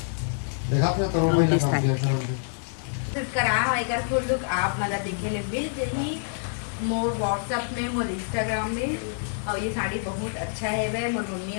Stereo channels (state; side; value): silent; right; digital silence